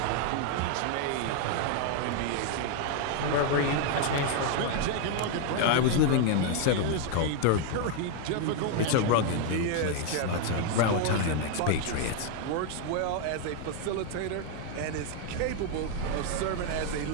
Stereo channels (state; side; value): different; both; correlation 0.00